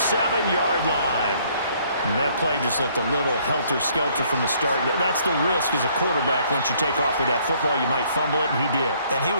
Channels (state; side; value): inverted; both; correlation -0.64